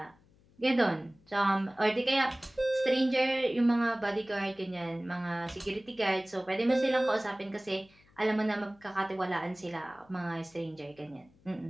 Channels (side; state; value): left; noise; hum, 30 dB below the sound